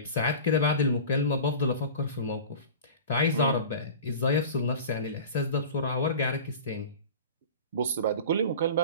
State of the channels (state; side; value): inverted; both; correlation -0.35